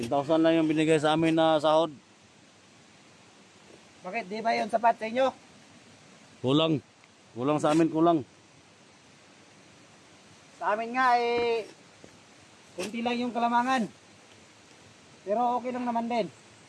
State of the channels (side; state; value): both; identical; correlation 1.00